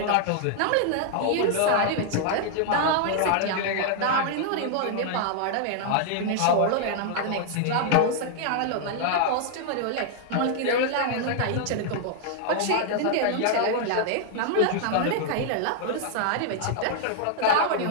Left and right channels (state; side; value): different; both; correlation 0.00